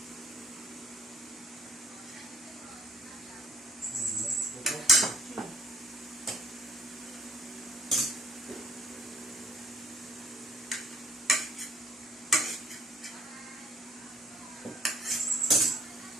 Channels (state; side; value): normal; both; correlation 0.62